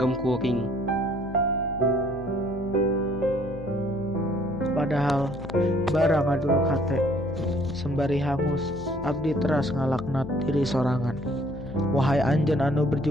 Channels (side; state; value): left; noise; hum, 14 dB below the sound